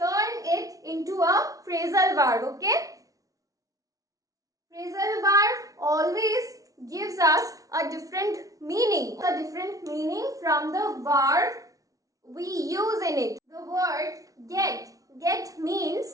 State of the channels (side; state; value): left; late; 0.17 ms